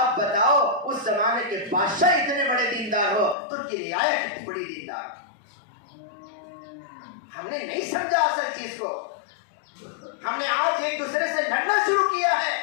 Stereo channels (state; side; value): drops out; right; at 3.4 s